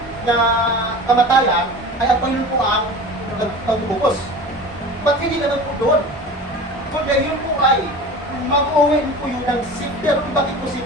na kamatayan ay ang Panginoon po ang pagtubos. Ba't hindi naman po doon? Kundi yun po ay mag-uwi po yun ng safety. Pero bakit po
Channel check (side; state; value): both; normal; correlation 0.36